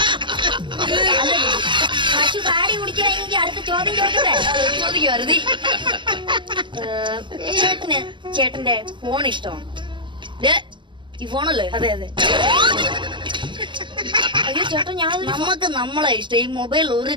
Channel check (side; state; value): left; late; 0.23 ms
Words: പശു കാടി കുടിക്കുകയാണെങ്കിൽ അടുത്ത ചോദ്യം ചോദിക്കട്ടെ? ചോദിക്കുവായിരുന്നു. ചേട്ടന്റെ ഫോൺ ഇഷ്ടമാണ്? ഈ ഫോണല്ലേ? അതെ അതെ. അയ്യോ ചേട്ടാ, നമുക്ക് നമ്മളെ ഇഷ്ടം. ഈ മൊബൈൽ ഒരു